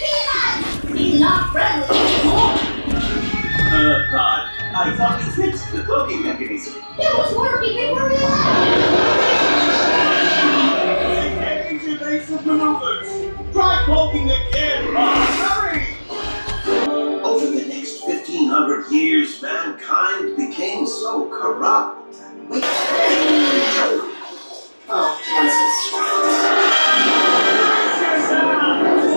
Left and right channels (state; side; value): inverted; both; correlation -1.00